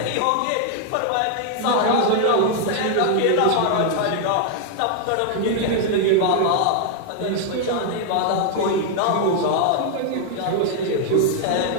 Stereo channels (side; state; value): both; different; correlation 0.00